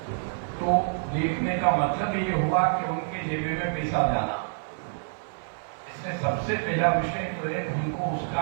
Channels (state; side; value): silent; left; 60 dB below the other